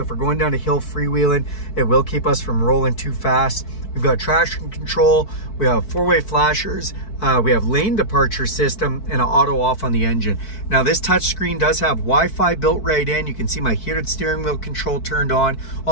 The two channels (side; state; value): right; late; 4.6 ms